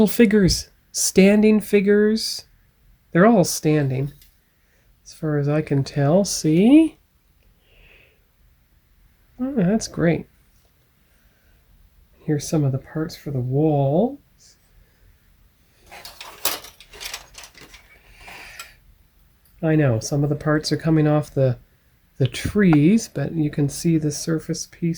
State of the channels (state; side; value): identical; both; correlation 1.00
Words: figures. Standing figures. They're all standing, as far as I can tell. See? Oh, that's great. Here's some of the parts for the walls. I know, some of the parts are coming off the trees, but you can see the surface